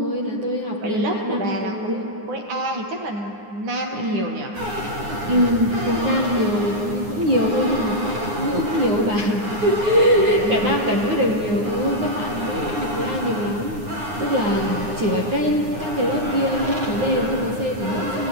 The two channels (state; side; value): late; left; 9.7 ms